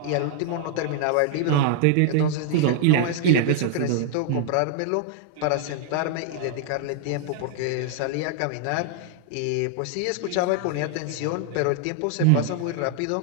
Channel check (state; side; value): different; both; correlation 0.00